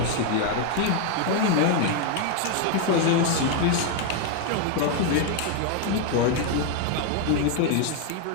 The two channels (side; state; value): both; different; correlation 0.01